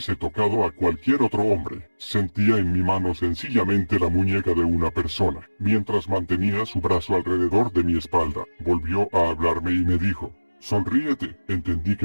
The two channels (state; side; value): inverted; both; correlation -1.00